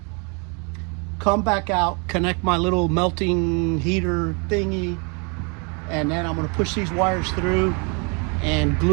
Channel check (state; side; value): quieter; left; 34.2 dB